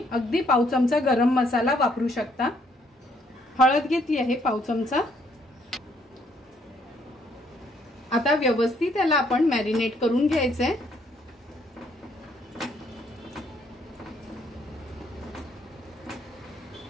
अगदी पाव चमचा गरम मसाला वापरू शकता. हळद घेतली आहे पाव चमचा. आता व्यवस्थित त्याला आपण मॅरिनेट करून घ्यायचंय.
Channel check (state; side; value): normal; both; correlation 0.68